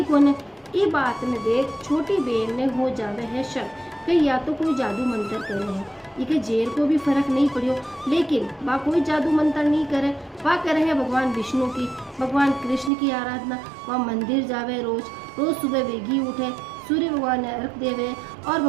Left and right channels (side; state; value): left; drops out; at 12.9 s